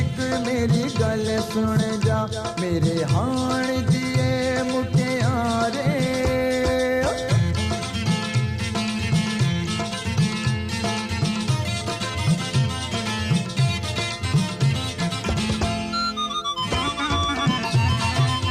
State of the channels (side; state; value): both; identical; correlation 1.00